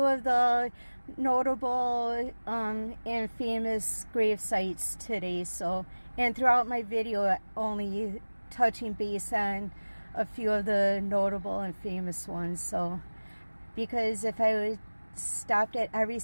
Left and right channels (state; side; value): inverted; both; correlation -1.00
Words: of the notable and famous grave sites today. So, and throughout my video, only touching base on a few of the notable and famous ones. So, because if I would stopped at every